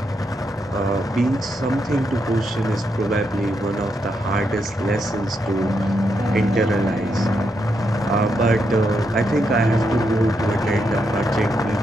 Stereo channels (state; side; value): normal; both; correlation 0.81